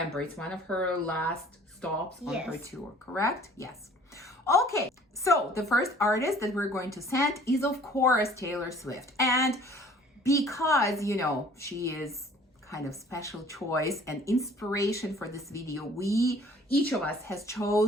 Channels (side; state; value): both; normal; correlation 0.53